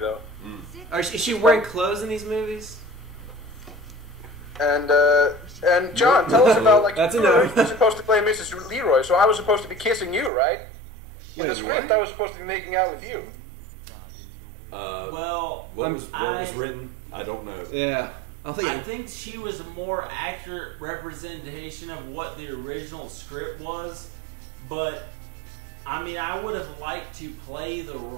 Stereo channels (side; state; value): left; drops out; at 10.3 s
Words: Is she wearing clothes in these movies? And John, tell us about like That's you were supposed to play Mrs. Leroy, so I was supposed to be kissing you, right? In the script, I was supposed to be making out with you. Well, what was written? I don't know. Yeah. I think she was a more accurate representation of what the original script was, but I mean, I would have liked to play the